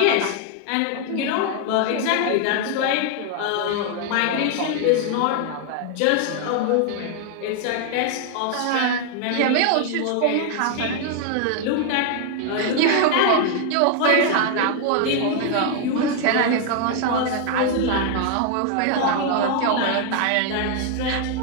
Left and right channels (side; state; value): both; different; correlation 0.00